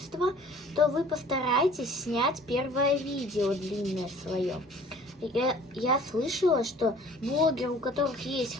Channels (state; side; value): normal; both; correlation 0.50